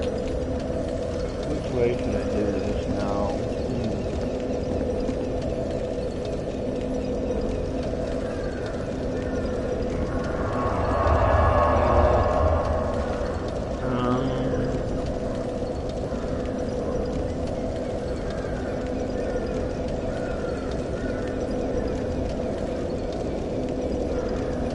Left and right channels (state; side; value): identical; both; correlation 1.00